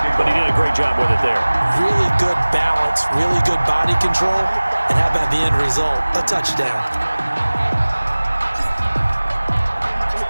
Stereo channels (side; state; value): both; inverted; correlation -1.00